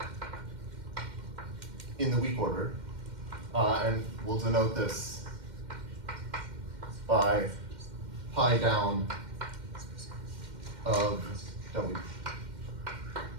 in the weak order, and we'll denote this by pi down of W.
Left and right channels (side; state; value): left; late; 2.1 ms